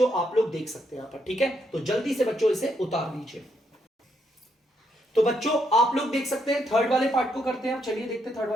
आप लोग देख सकते हैं यहां पर, ठीक है। तो जल्दी से बच्चों इसे उतार लीजिए। तो बच्चों आप लोग देख सकते हैं, थर्ड वाले पार्ट को करते हैं। चलिए देखते हैं थर्ड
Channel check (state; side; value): normal; both; correlation 0.77